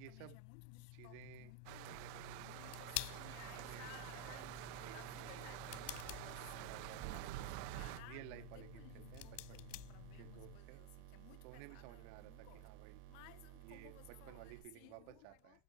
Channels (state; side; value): different; both; correlation 0.01